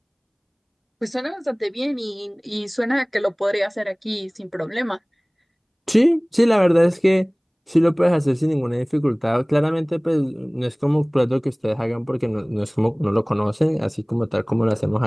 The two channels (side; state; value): both; identical; correlation 1.00